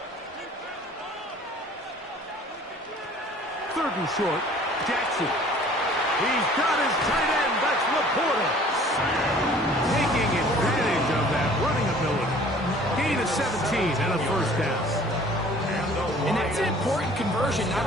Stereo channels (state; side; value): normal; both; correlation 0.51